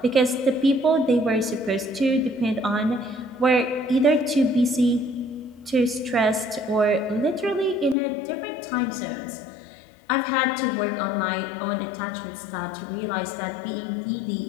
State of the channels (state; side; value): drops out; right; at 8.0 s